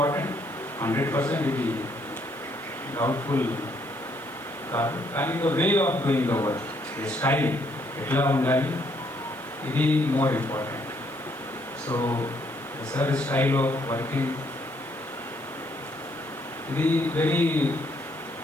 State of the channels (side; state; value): left; noise; hiss, 24 dB below the sound